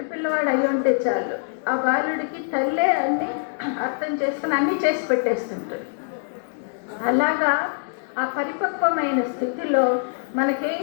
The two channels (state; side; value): silent; right; 63 dB below the other